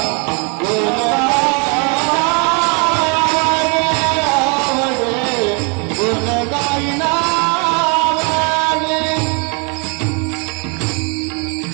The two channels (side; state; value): left; quieter; 34.5 dB